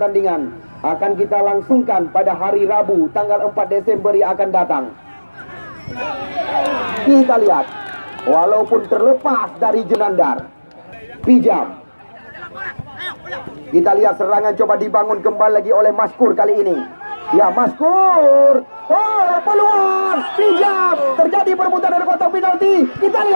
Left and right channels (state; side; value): inverted; both; correlation -1.00